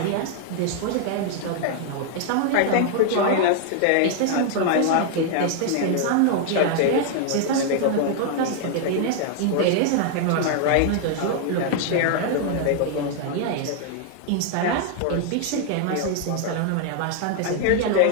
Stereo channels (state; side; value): different; both; correlation 0.00